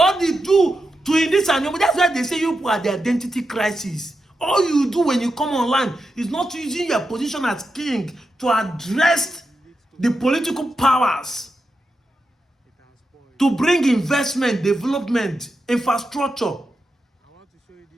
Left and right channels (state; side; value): normal; both; correlation 0.88